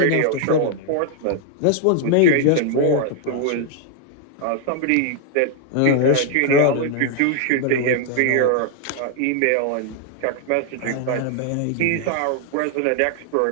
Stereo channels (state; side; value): different; both; correlation 0.00